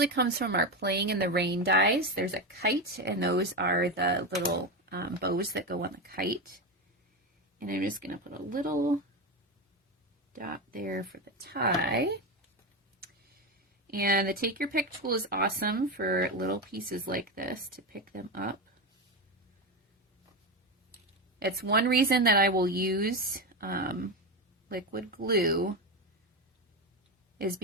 comes from our Playing in the Rain dies. There's a kite, and those are the little bows that go on the kite. And I'm just going to put a little dot there for the tie. And the Take Your Pick tool is awesome for little pieces like this to pick them up. It's one reason that I will use liquid glue, is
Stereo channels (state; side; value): normal; both; correlation 0.15